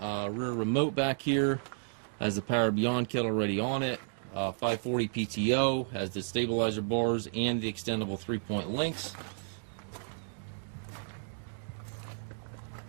remote back here, has the Power Beyond kit already on it, 540 PTO, has the stabilizer bars and the extendable 3-point links.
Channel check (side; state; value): left; silent; digital silence